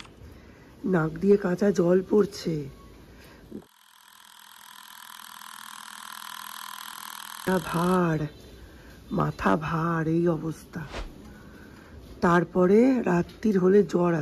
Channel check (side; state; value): both; identical; correlation 1.00